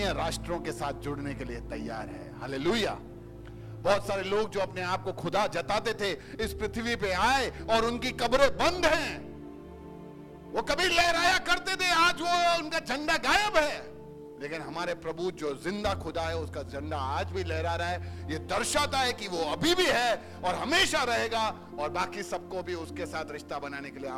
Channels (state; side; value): identical; both; correlation 1.00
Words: राष्ट्रों के साथ जुड़ने के लिए तैयार है। हालेलुया। बहुत सारे लोग जो अपने आप को खुदा जताते थे इस पृथ्वी पे आए और उनकी कब्रें बंद हैं। वो कभी लहराया करते थे, आज वो उनका झंडा गायब है। लेकिन हमारे प्रभु जो जिंदा खुदा है, उसका झंडा आज भी लहरा रहा है। ये दर्शाता है कि वो अभी भी है और हमेशा रहेगा, और बाकी सबको भी उसके साथ रिश्ता बनाने के लिए